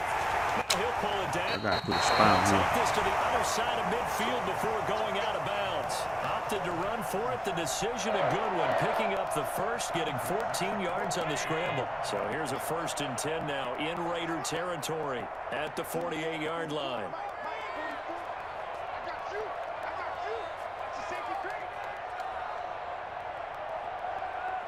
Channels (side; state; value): both; identical; correlation 1.00